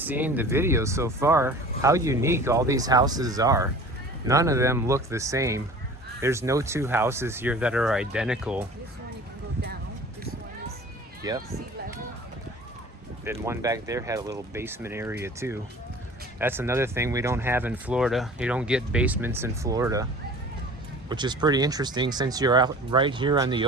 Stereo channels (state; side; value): normal; both; correlation 0.43